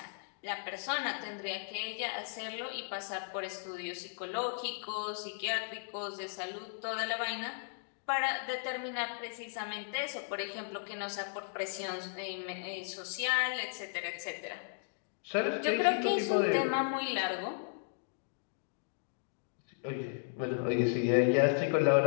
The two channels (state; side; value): silent; right; digital silence